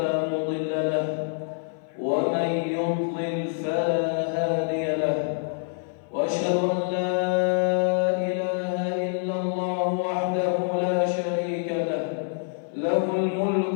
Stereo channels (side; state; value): right; silent; 56 dB below the other